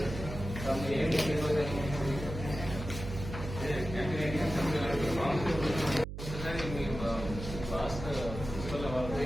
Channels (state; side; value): noise; right; hum, 8 dB below the sound